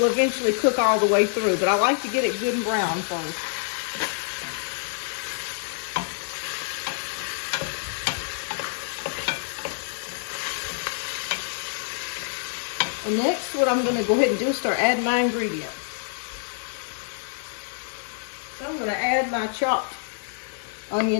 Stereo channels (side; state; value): right; silent; 59 dB below the other